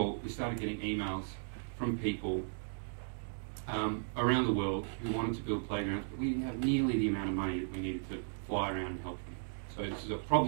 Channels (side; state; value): left; silent; digital silence